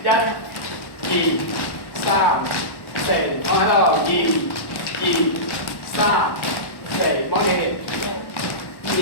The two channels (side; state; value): right; late; 1.1 ms